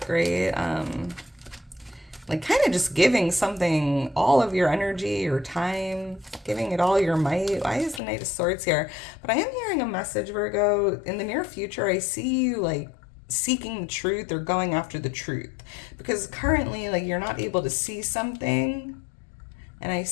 right? Like kind of just giving something all of your energy, your time, giving it all your might. Why is the Knight of Swords here? But I am hearing a message, Virgo. In the near future, I see you like seeking the truth or going after the truth, because currently like you're not able to see something, and I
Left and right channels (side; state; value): right; drops out; at 8.0 s